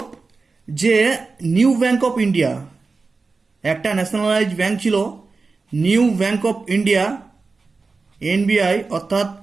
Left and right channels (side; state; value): left; quieter; 4.1 dB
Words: যে নিউ ব্যাংক অফ ইন্ডিয়া, একটা ন্যাশনালাইজ ব্যাংক ছিল, new bank of India, NBI, অর্থাৎ,